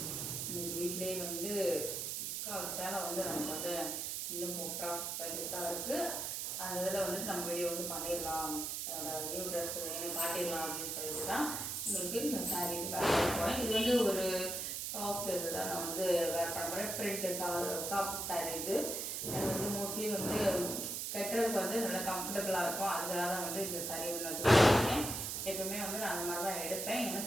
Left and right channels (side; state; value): right; noise; hiss, 3 dB below the sound